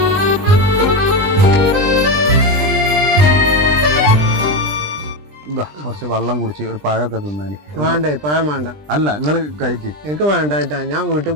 ഇതാ കുറച്ച് വെള്ളം കുടിച്ച് ഒരു പഴമൊക്കെ തിന്നാന്. വേണ്ടേ? പഴം വേണ്ട. അല്ല, നിങ്ങള് കഴിക്ക്. എനിക്ക് വേണ്ടായിട്ടാ. ഞാൻ വീട്ടിൽ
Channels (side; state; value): left; late; 20 ms